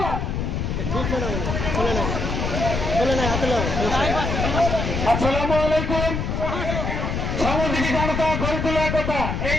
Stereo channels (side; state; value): left; noise; rumble, 2 dB below the sound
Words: আসসালামু আলাইকুম। সামাজিক জনতা গড়ে তোলার কথা, এই